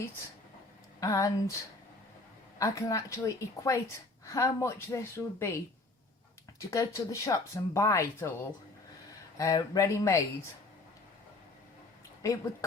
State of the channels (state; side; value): quieter; right; 3.1 dB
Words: and I can actually equate how much this would be to go to the shops and buy it all ready-made. It would